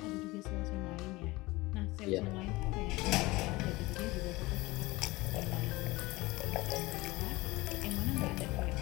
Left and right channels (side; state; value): right; quieter; 21.2 dB